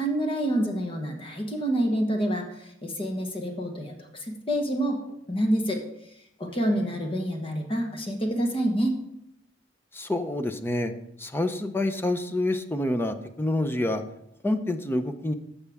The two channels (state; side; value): normal; both; correlation 0.82